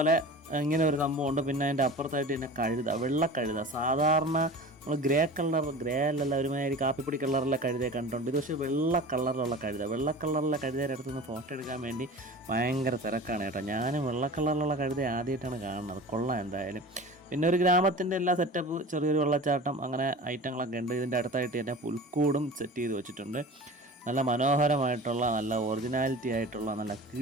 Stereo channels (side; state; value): both; normal; correlation 0.36